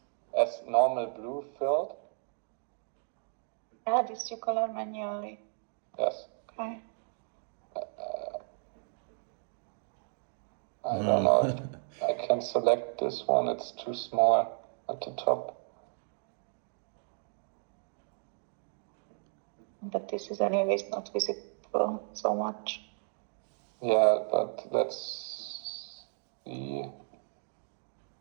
as normal blue filled. Yeah, this you color manually. Yes. Okay. I don't know if I can select this one. It's too small at the top. But this is anyways not visible so much. Yeah, but let's see.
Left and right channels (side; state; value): left; silent; 55 dB below the other